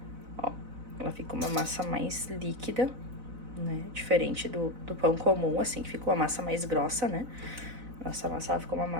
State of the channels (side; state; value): left; late; 4.0 ms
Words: ó, ela ficou uma massa mais líquida, né, diferente do pão comum, assim, que ficou a massa mais grossa, né, nossa massa, ela ficou uma